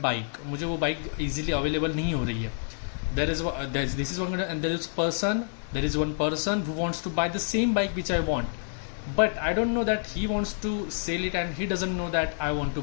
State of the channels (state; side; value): silent; right; digital silence